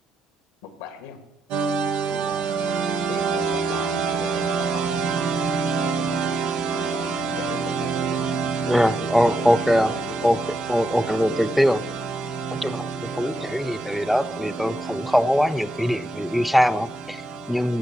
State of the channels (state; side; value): normal; both; correlation 0.82